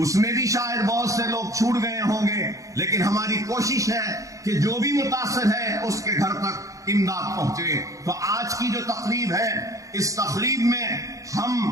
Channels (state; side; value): late; left; 0.16 ms